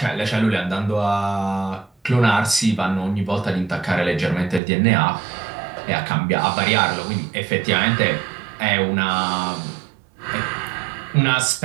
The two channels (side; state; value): left; drops out; at 4.6 s